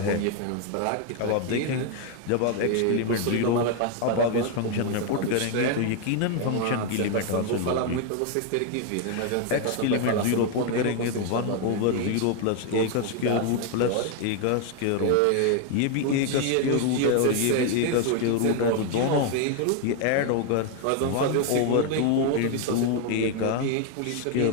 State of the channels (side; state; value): both; different; correlation 0.01